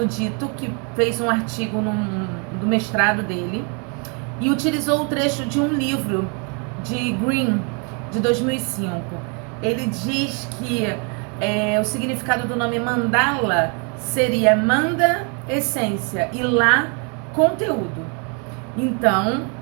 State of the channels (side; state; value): left; quieter; 36.2 dB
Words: Dito, que fez um artigo do mestrado dele, e utilizou o trecho de um livro de Green, de 2005. Ele diz que o significado do nome mandala seria manda, essência, e lá, conteúdo. Então,